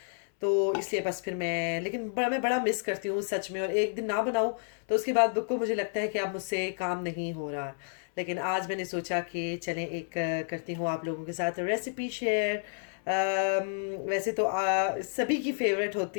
तो इसलिए बस फिर मैं बड़ा मिस करती हूँ सच में। और एक दिन ना बनाऊँ तो उसके बाद बिल्कुल मुझे लगता है कि अब मुझसे काम नहीं हो रहा। लेकिन आज मैंने सोचा कि चलें एक करती हूँ आप लोगों के साथ रेसिपी शेयर। वैसे तो सभी की फेवरेट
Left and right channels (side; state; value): right; silent; 58 dB below the other